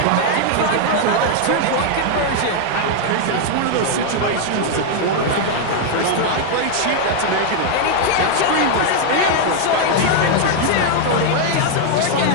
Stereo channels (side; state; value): both; different; correlation 0.00